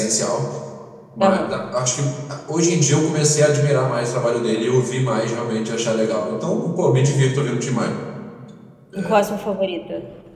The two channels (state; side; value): identical; both; correlation 1.00